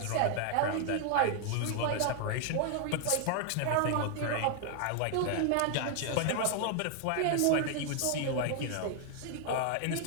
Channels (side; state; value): both; different; correlation 0.00